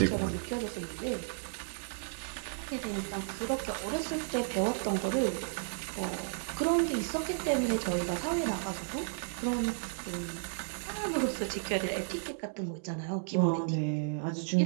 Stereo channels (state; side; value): silent; left; digital silence